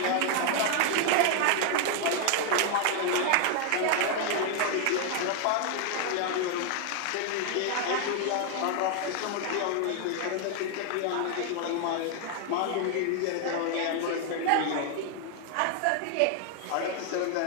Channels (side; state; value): both; different; correlation 0.00